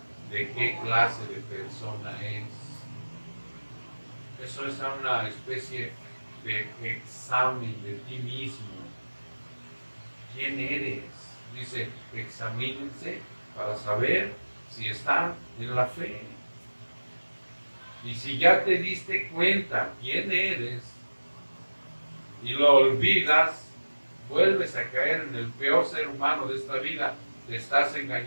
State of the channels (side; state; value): both; inverted; correlation -1.00